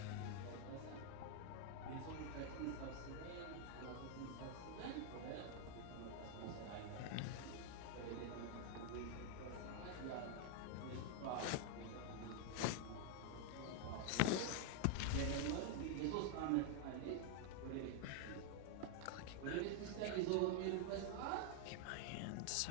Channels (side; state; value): both; different; correlation 0.00